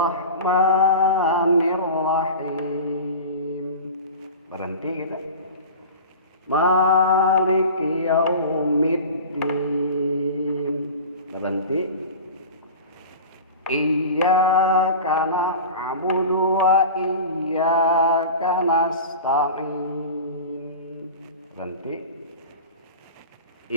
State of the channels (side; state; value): both; inverted; correlation -0.34